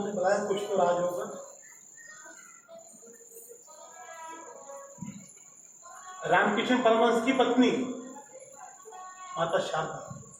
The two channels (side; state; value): both; identical; correlation 1.00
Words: ने बुलाया, कुछ तो राज होगा। रामकृष्ण परमहंस की पत्नी माता शारदा,